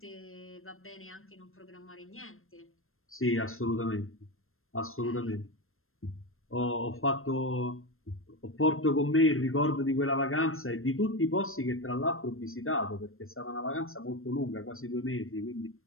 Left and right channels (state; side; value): late; right; 0.61 ms